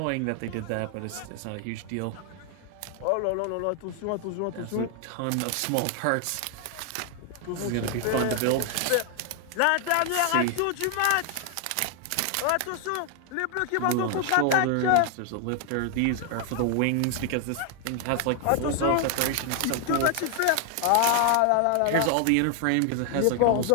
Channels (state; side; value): different; both; correlation 0.00